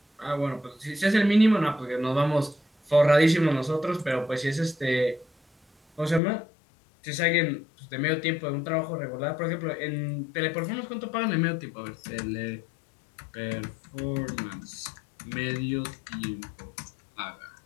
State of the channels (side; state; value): right; drops out; at 6.2 s